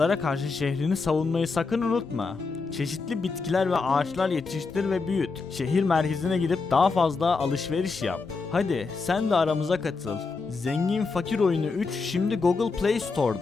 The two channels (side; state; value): right; quieter; 4.3 dB